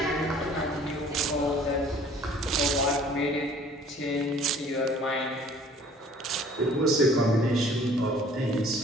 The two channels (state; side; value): normal; both; correlation 0.53